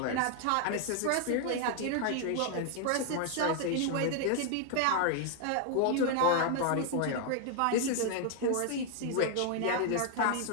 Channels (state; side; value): different; both; correlation 0.00